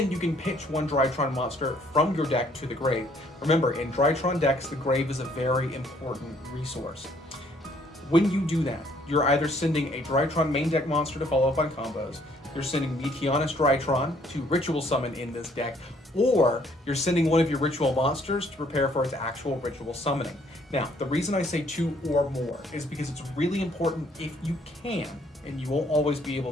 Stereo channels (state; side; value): normal; both; correlation 0.64